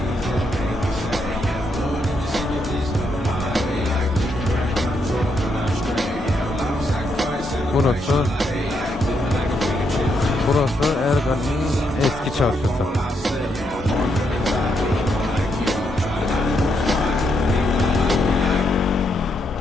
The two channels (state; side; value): normal; both; correlation 0.78